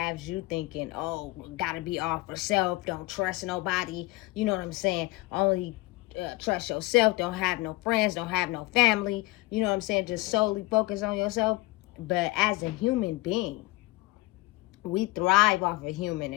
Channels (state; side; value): quieter; right; 20.9 dB